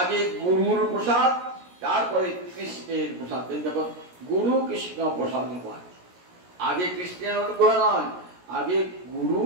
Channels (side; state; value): left; late; 17 ms